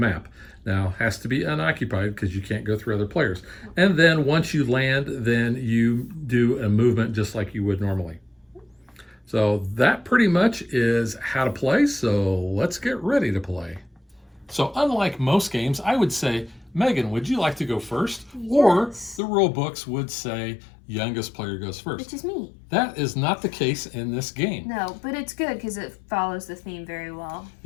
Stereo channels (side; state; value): right; drops out; at 19.2 s